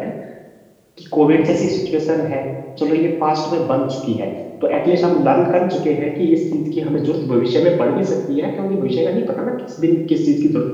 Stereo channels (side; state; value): both; identical; correlation 1.00